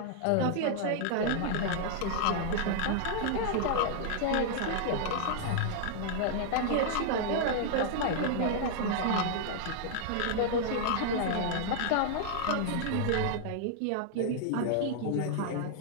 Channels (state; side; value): different; both; correlation -0.01